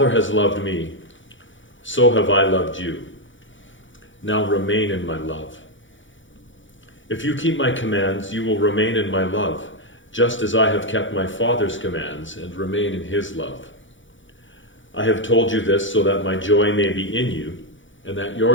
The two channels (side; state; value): right; late; 0.56 ms